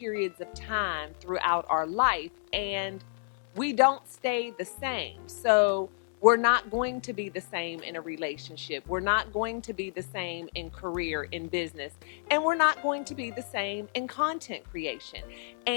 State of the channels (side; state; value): right; silent; digital silence